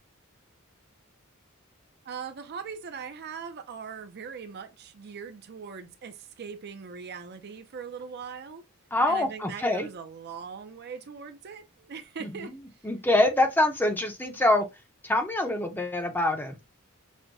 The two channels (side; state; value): both; normal; correlation 0.63